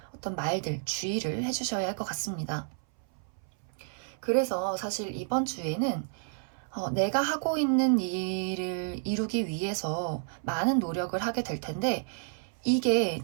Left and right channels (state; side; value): silent; left; 57 dB below the other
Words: 어떤 말들, 주의를 해주셔야 할 것 같습니다. 그래서 사실 이번 주에는 내가 하고 있는 일을 이루기 위해서 많은 노력을 하게 될 텐데 이게